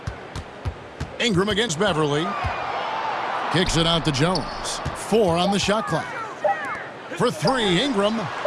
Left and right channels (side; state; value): both; identical; correlation 1.00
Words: Ingram against Beverly. Kicks it out to Jones. 4 on the shot clock. For 3, Ingram.